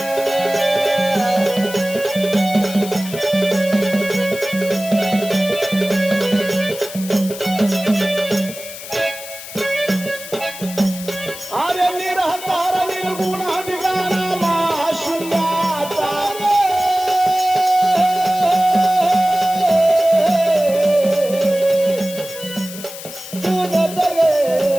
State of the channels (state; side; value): noise; left; hiss, 12 dB below the sound